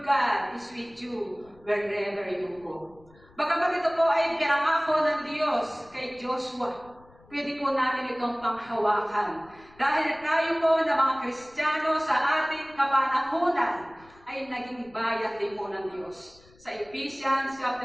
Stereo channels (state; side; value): noise; left; rumble, 27 dB below the sound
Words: God is with you wherever you go. Bagamat ito po ay pinangako ng Diyos kay Joshua, pwede po natin itong panghawakan. Dahil tayo po na mga Kristiyano sa ating kapanahunan ay naging bayan din po ng Diyos. Sa Ephesians